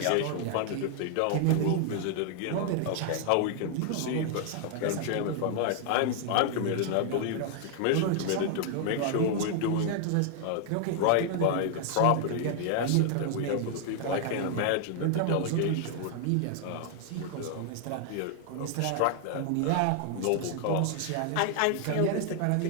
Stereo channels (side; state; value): both; different; correlation 0.00